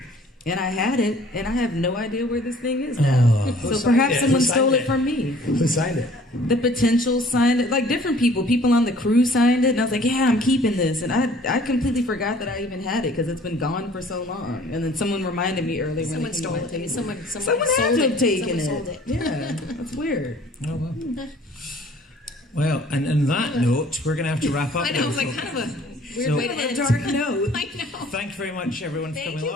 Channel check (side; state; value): both; normal; correlation 0.53